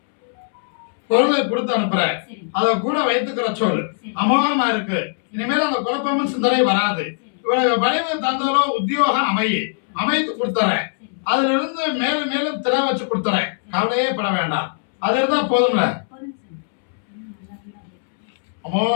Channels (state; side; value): silent; right; 65 dB below the other